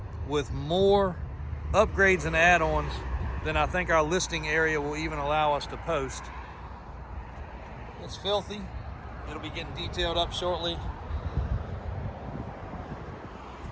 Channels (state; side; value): identical; both; correlation 1.00